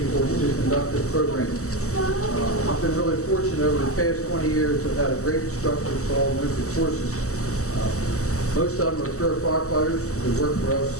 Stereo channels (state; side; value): late; right; 0.65 ms